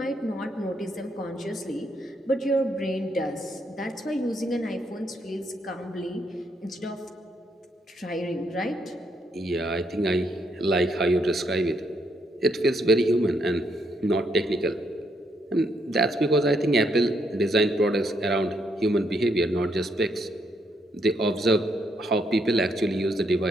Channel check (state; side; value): normal; both; correlation 0.75